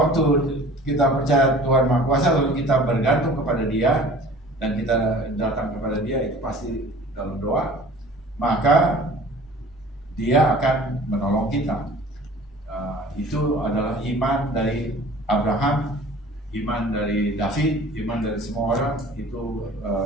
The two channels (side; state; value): both; normal; correlation 0.46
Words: kita percaya Tuhan Maha Kuasa, lalu kita bergantung kepada Dia dan kita datang kepada Dia, itu pasti dalam doa, maka Dia akan menolong kita. Itu adalah iman dari Abraham, iman dari David, iman dari semua orang. Itu